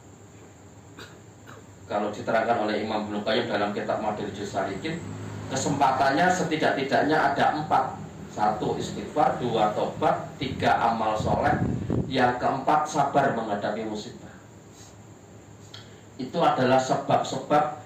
Kalau diterangkan oleh Imam Ibnu Qayyim dalam kitab Madarijus Salikin, kesempatannya setidak-tidaknya ada 4. 1 istighfar, 2 tobat, 3 amal soleh, yang keempat sabar menghadapi musibah. Itu adalah sebab-sebab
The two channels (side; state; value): both; identical; correlation 1.00